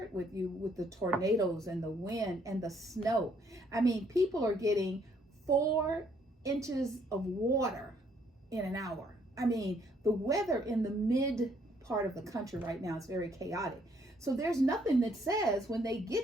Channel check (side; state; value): both; normal; correlation 0.67